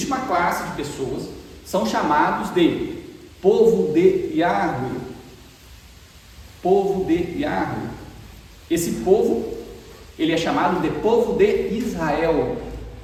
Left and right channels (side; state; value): both; identical; correlation 1.00